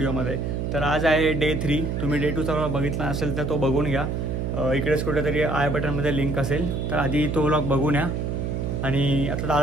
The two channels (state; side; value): noise; right; hum, 1 dB below the sound